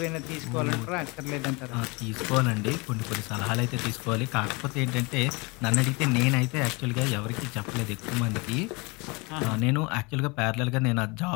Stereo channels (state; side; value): quieter; right; 27.6 dB